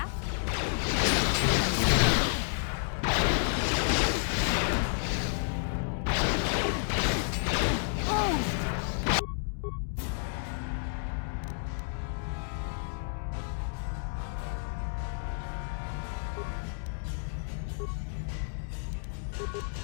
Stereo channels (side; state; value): right; silent; digital silence